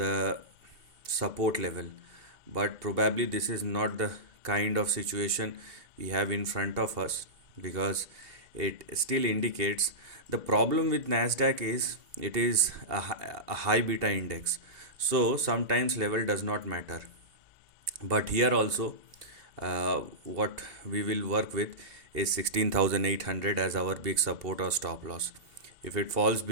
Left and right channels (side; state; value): left; late; 2.2 ms